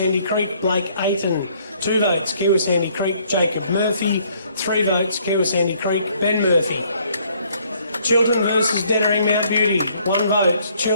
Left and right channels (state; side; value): inverted; both; correlation -0.64